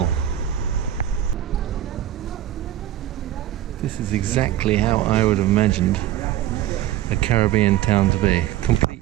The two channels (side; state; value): left; quieter; 12.5 dB